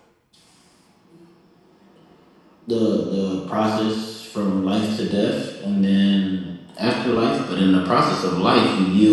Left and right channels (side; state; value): both; identical; correlation 1.00